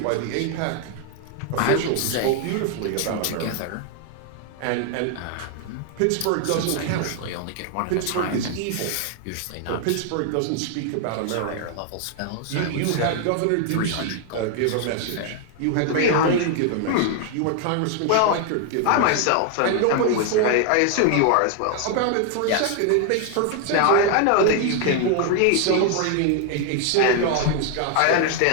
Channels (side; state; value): both; different; correlation 0.00